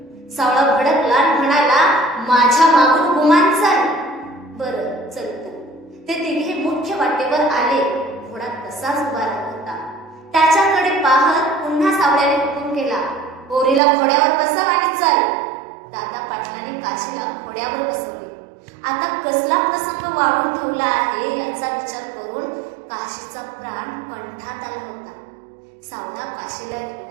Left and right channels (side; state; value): left; drops out; at 13.8 s